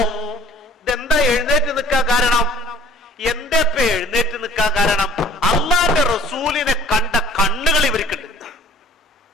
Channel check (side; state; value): both; normal; correlation 0.50